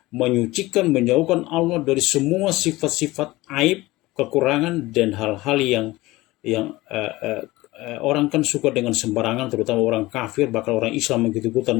menyucikan, menjauhkan Allah dari semua sifat-sifat aib, kekurangan, dan hal-hal yang orang kan suka dengan sembarangan, terutama orang kafir, bahkan orang Islam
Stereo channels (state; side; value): quieter; right; 19.4 dB